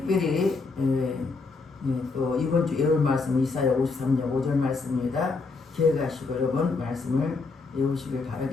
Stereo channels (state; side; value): quieter; right; 4.0 dB